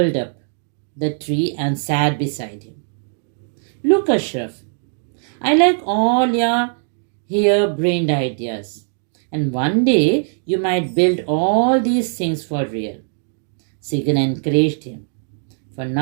up the tree and sat beside him. Look, Ashraf, I like all your harebrained ideas. And one day you might build all these things for real. Segan encouraged him. For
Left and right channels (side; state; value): left; silent; 64 dB below the other